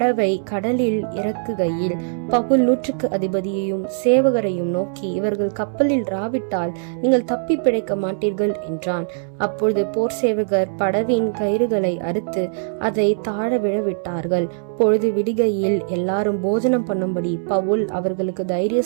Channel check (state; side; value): silent; left; 65 dB below the other